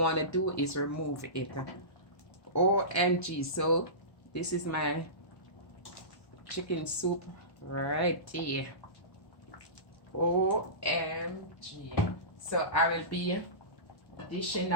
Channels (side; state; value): right; late; 1.1 ms